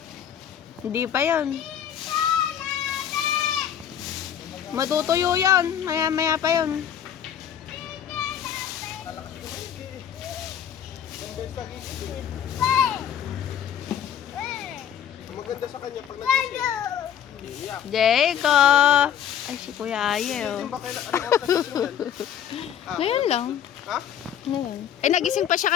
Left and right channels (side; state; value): right; quieter; 9.4 dB